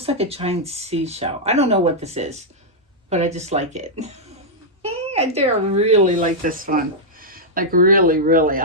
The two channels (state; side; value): normal; both; correlation -0.07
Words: like a giant seashell. I don't know what this is, but I just like it. I do really like this one. Like really, really